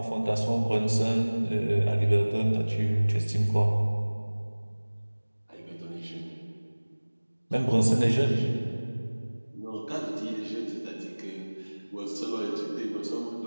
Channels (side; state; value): both; inverted; correlation -1.00